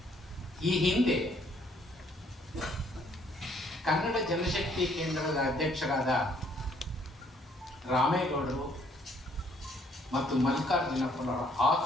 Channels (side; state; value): both; normal; correlation 0.64